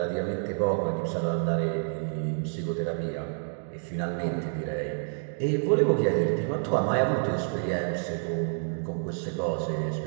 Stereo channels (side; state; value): left; silent; digital silence